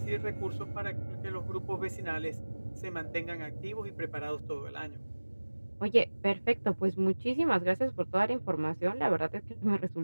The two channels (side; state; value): both; inverted; correlation -1.00